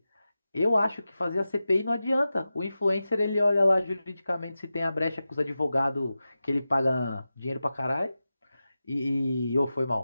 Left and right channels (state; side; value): inverted; both; correlation -0.93